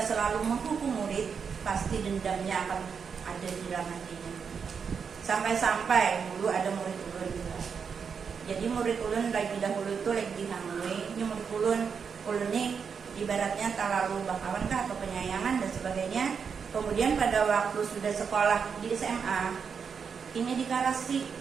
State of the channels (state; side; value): quieter; left; 6.3 dB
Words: selalu menghukum murid, pasti dendamnya akan ada di dalam hatinya. Sampai-sampai dulu ada murid ulun juga. Jadi murid ulun lagi dahulu itu lagi dihamui. Ini murid ulun ini ibaratnya terlalu bakawan kah atau penyayangan dan sebagainya. Kemudian pada waktu sudah sekolah di SMA, ini dikarasi